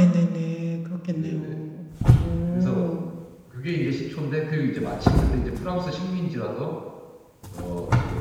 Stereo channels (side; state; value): both; identical; correlation 1.00